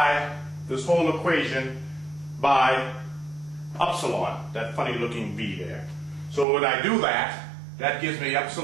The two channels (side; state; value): left; drops out; at 6.5 s